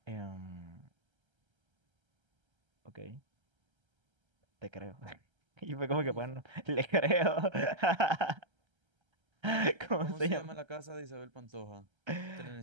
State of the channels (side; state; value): left; late; 1.3 ms